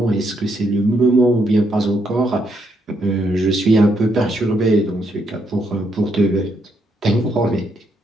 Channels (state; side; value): normal; both; correlation 0.76